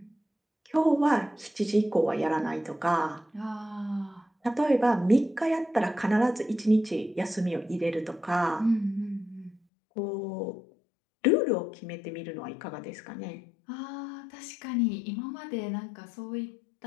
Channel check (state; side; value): drops out; right; at 9.6 s